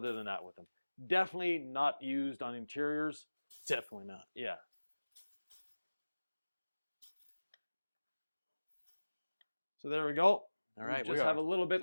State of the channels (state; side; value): inverted; both; correlation -1.00